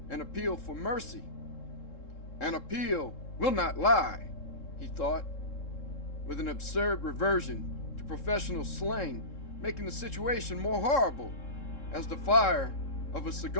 an appeal for mercy. An appeal will not lie, he thought, with an absurd reversion to professional slang, making the situation more horrible, as the fire of a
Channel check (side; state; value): right; late; 3.7 ms